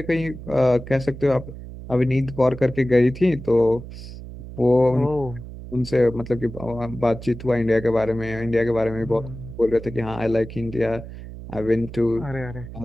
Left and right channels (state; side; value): noise; right; hum, 12 dB below the sound